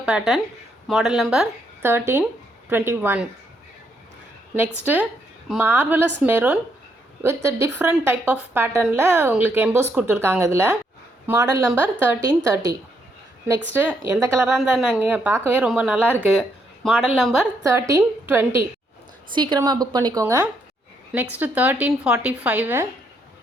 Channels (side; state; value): both; normal; correlation 0.75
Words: pattern, model number 1321. Next marvelous maroon with different type of pattern la உங்களுக்கு EMBOSS கொடுத்துருக்காங்க. இதில் model number 1330. Next எந்த கலராக இருந்தால் நாங்கள் பார்க்கவே ரொம்ப நல்லா இருக்குது. Model number 1320. சீக்கிரமாக புக் பண்ணிக்கோங்க. Next 1345